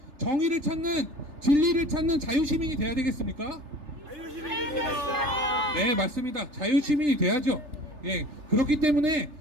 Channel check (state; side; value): late; left; 3.3 ms